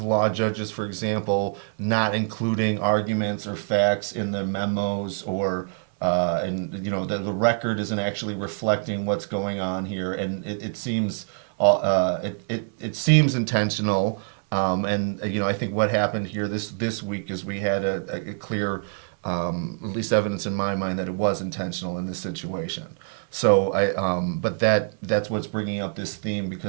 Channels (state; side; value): silent; left; 59 dB below the other